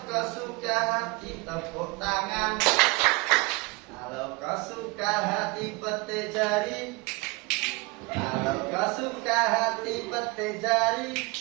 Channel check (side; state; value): left; quieter; 26.2 dB